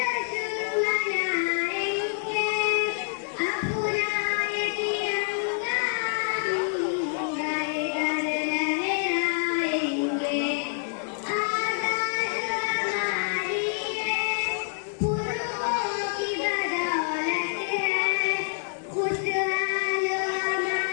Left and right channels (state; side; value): silent; right; 56 dB below the other